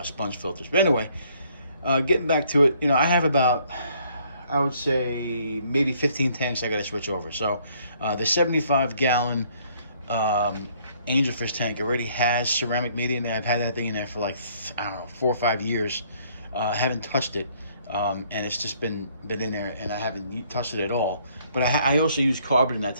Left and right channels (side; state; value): both; inverted; correlation -0.64